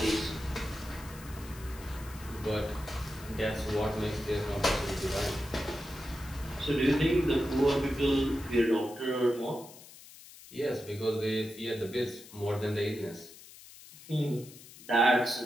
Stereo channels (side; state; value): left; noise; hiss, 18 dB below the sound